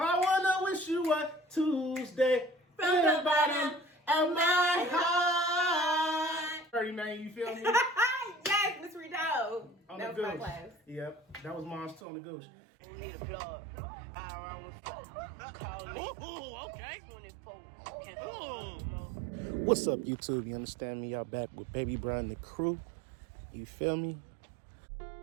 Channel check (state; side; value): drops out; left; at 12.0 s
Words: wanna wish you a Tuesday From the bottom of my heart. 30, man, you feel me? Yes, Miss Rito. On That the was my gooch. class. Yep, that was mom's too on the gooch. Need a plug. I run with fuck. Call me. Ooh, okay. 24. What's up, YouTube? You understand me? Y'all back with Baby Bro and the crew. You feel me?